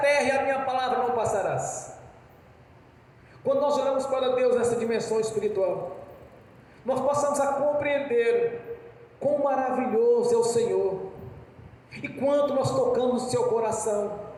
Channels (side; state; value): both; identical; correlation 1.00